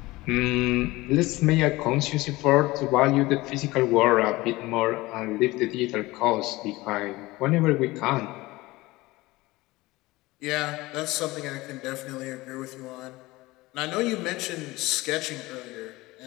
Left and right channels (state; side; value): quieter; right; 20.2 dB